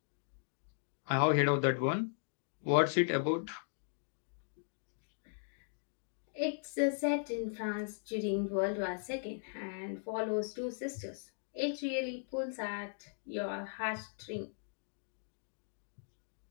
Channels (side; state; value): right; silent; digital silence